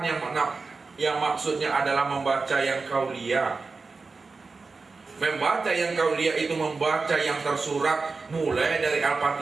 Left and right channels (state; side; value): quieter; left; 4.2 dB